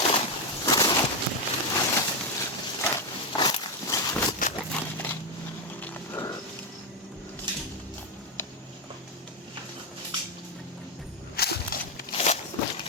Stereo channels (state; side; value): normal; both; correlation 0.06